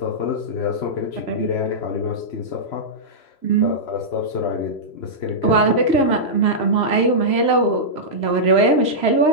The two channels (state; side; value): late; right; 3.0 ms